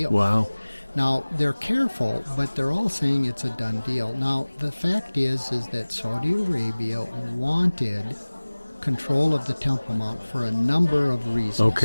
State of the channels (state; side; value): inverted; both; correlation -1.00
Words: Wow. Now, they're careful, but they're all saying it's a done deal. Now, the fact is that Saudi Arabia wanted control of the Temple Mount for a number of reasons.